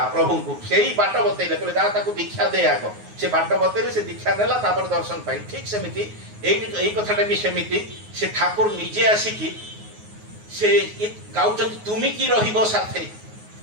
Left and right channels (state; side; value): late; left; 9.5 ms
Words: प्रभु को सेही बाट बतैले कहले जा ताको दीक्षा दे आगो से बाट बतैले से दीक्षा नेला तापर दर्शन पाई। ठीक सेमिति एई कथाटा भी सेमिति से ठाकुर निजे आसी की से गाउचंती तुमी की रहिबो साथे